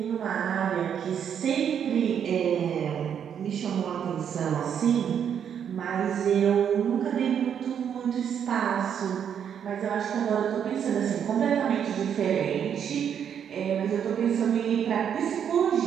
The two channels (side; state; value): left; quieter; 8.4 dB